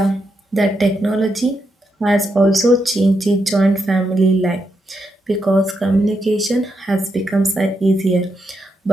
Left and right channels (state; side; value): normal; both; correlation 0.83